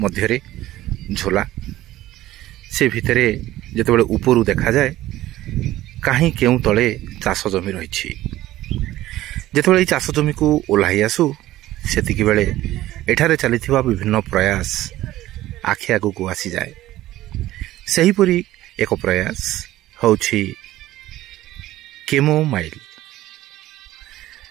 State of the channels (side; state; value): left; quieter; 15.3 dB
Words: झोला से भितरे जितेबाला उपरू देखा जाए कहीं केउ तले चाष जमी रही जितेबाला चाष जमी को ओह्लाई आसू सेतिक बेले एठारे चलीथिबा विभिन्न प्रयास आखि आगू आसी जाए। सेहीपरि एक प्रयास होछि केमोमाइल।